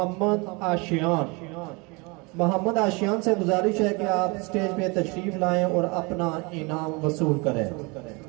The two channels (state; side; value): quieter; left; 28.1 dB